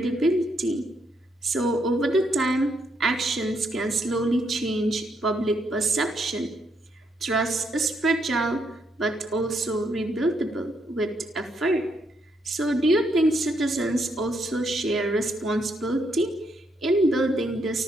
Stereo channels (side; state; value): both; normal; correlation 0.76